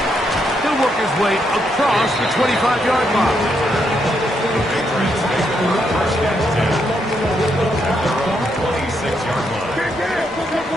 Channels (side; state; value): both; normal; correlation 0.78